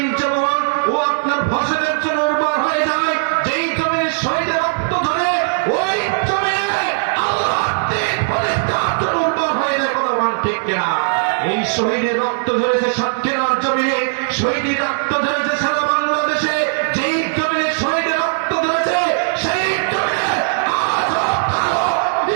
যেমন ও আপনার ফসলের জন্য উর্বর হয়ে যায়, যেই জমিনে শহীদের রক্ত ধরে ওই জমিনে আল্লাহর দিন প্রতিষ্ঠার জন্য উর্বর হয়ে যায়। কোনো মান ঠিক কিনা? এই শহীদের রক্ত ধরেছে সাতক্ষীরার জমিনে, শহীদের রক্ত ধরেছে সারা বাংলাদেশে, যেই জমিনে শহীদের রক্ত ধরেছে সেই জমিনে আজও কালো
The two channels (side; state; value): left; silent; 60 dB below the other